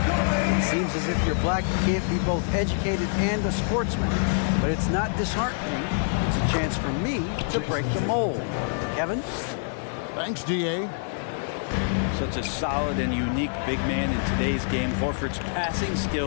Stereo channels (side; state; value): right; silent; 61 dB below the other